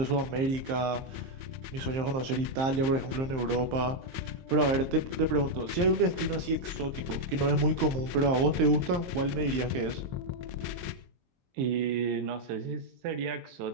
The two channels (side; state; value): left; late; 23 ms